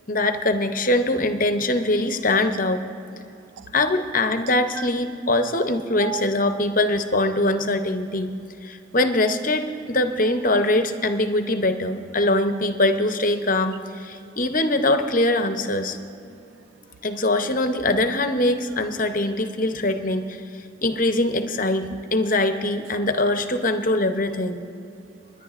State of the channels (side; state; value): both; normal; correlation 0.18